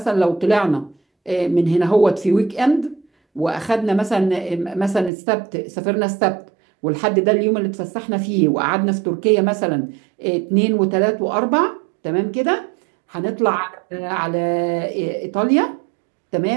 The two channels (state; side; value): drops out; left; at 5.1 s